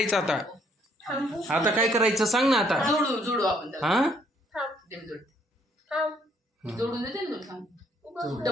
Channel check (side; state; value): both; normal; correlation 0.66